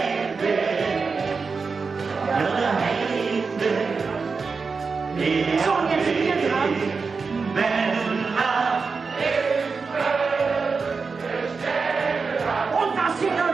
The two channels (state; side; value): quieter; left; 4.8 dB